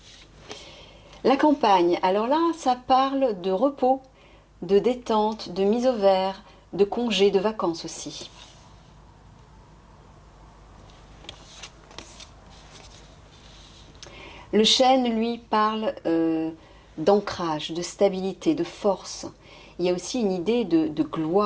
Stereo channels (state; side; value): identical; both; correlation 1.00